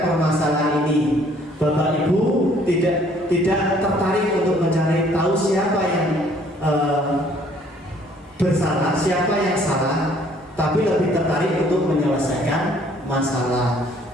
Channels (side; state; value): both; normal; correlation 0.60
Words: permasalahan ini. Bapak Ibu tidak tertarik untuk mencari tahu siapa yang bersalah, siapa yang salah, tapi lebih tertarik untuk menyelesaikan masalah.